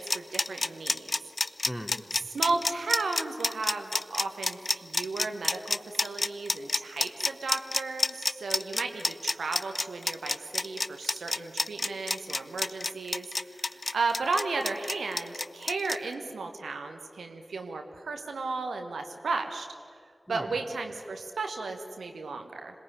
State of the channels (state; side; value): normal; both; correlation 0.92